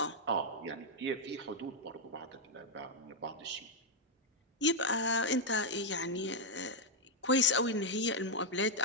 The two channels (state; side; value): normal; both; correlation -0.03